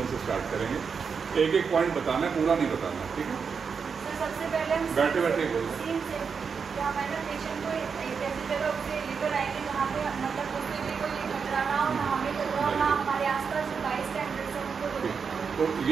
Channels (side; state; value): left; quieter; 5.9 dB